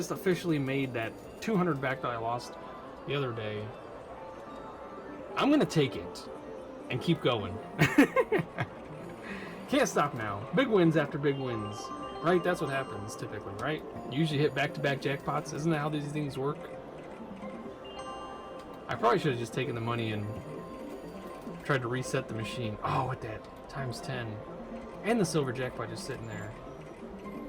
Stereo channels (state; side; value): identical; both; correlation 1.00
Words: officially made that 200 back that I lost the other day. I'm gonna take it and keep going. Can't stop now. Big wins after big wins. Right? That's what happens typically, right? You usually hit back-to-back jackpots. Isn't that how these things work? I probably should have just taken the money and tried to reset the machine. Oh, with that times 10. And the silver jackpot just sitting there.